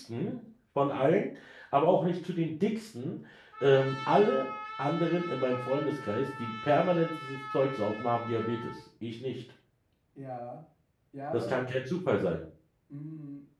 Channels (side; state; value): both; identical; correlation 1.00